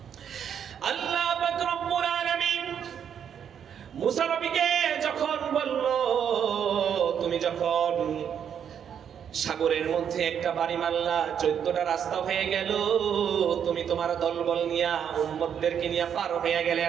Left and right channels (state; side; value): quieter; left; 8.4 dB